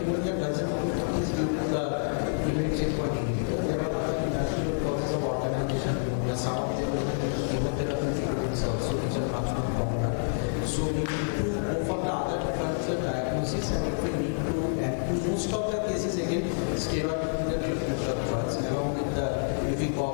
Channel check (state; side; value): silent; right; digital silence